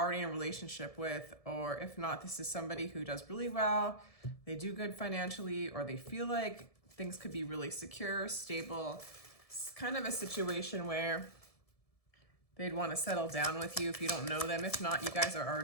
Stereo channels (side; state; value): right; late; 1.7 ms